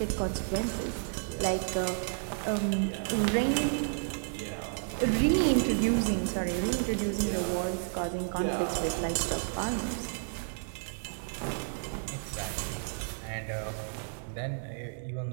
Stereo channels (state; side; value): silent; left; digital silence